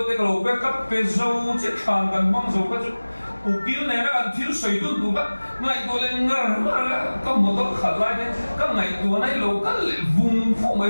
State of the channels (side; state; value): both; inverted; correlation -1.00